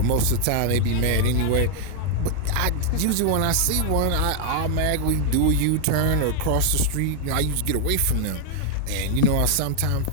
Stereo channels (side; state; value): both; different; correlation 0.00